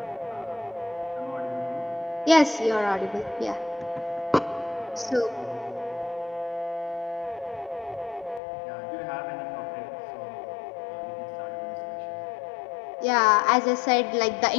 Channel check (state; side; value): drops out; right; at 8.4 s